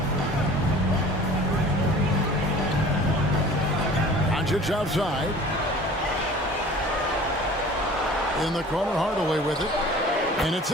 Doncic outside. In the corner, Hardaway with it. And it's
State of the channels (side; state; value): both; normal; correlation 0.45